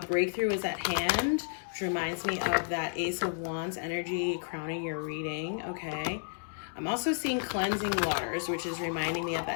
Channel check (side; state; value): right; silent; digital silence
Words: breakthrough is at hand, which reminds me of that Ace of Wands energy crowning your reading, okay? I'm also seeing cleansing waters, which is reminding me of